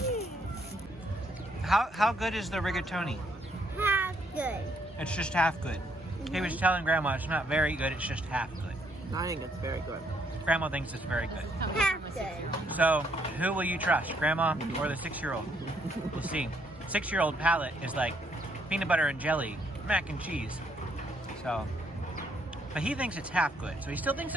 How good is the rigatoni? Half good. It's just half good. He was telling Grandma it's not very good, it's just half good. I think it's very good. Grandma thinks it's very good. Half good. So, who will you trust, Grandma or the 6-year-old? We'll see. 6-year-old palate is like peanut butter and jelly, mac and cheese. So, but he thinks it's half good. So he still thinks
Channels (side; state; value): both; normal; correlation 0.70